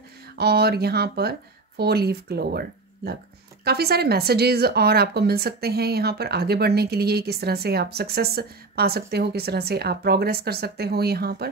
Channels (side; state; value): left; quieter; 3.7 dB